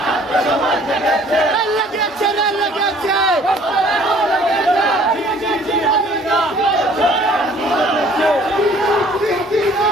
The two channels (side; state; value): both; normal; correlation 0.55